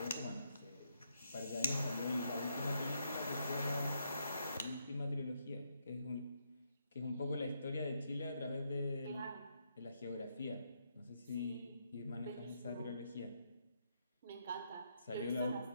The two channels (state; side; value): inverted; both; correlation -0.78